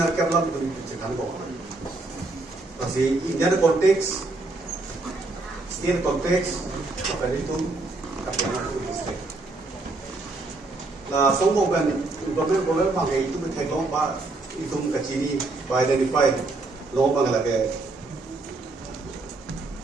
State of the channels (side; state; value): left; quieter; 3.2 dB